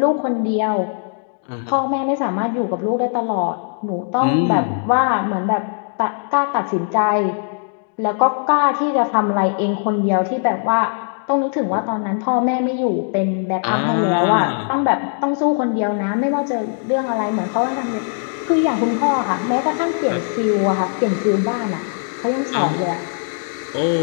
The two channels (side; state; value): right; silent; 61 dB below the other